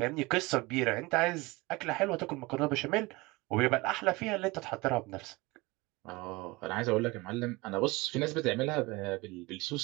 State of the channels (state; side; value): quieter; left; 23.2 dB